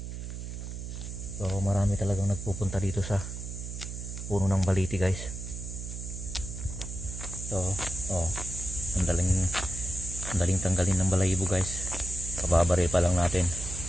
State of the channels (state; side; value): noise; right; hum, 7 dB below the sound